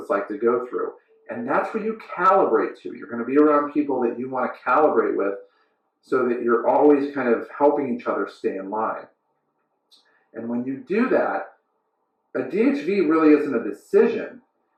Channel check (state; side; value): identical; both; correlation 1.00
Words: like to go through. And that's where you calibrate to. You're going to be around people that you want to calibrate with so that you're always kind of helping each other stay in line. And when you do that, a DHV really isn't a decision,